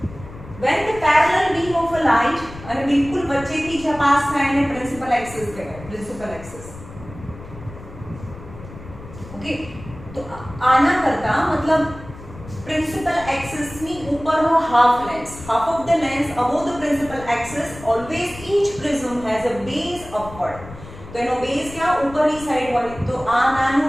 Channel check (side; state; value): left; noise; rumble, 16 dB below the sound